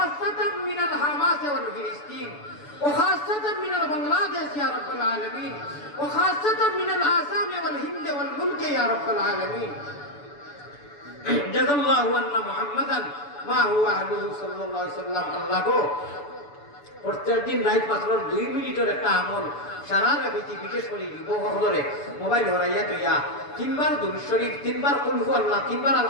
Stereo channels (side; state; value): right; late; 6.9 ms